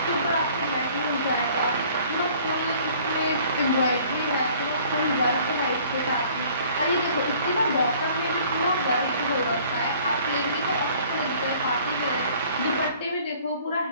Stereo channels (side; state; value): both; inverted; correlation -0.54